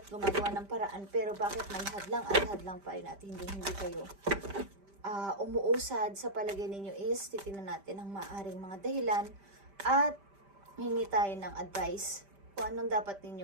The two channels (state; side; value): late; left; 5.1 ms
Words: gumagawa ng paraan, pero bakit may hadlang at hadlang pa rin at hindi kayo umuusad sa palagay ninyo is titingnan natin ang maaaring mga dahilan at hingi tayo ng advice kung anong dapat